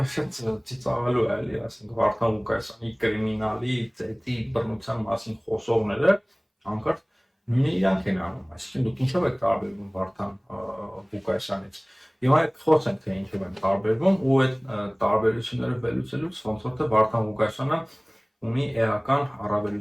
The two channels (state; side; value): identical; both; correlation 1.00